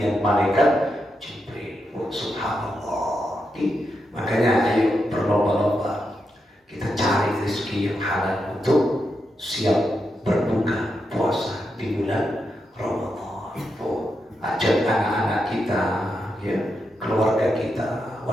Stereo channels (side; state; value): both; normal; correlation 0.85